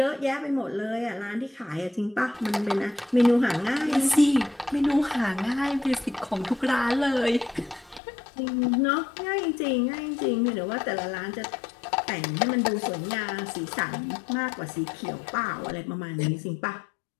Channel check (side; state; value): right; drops out; at 8.0 s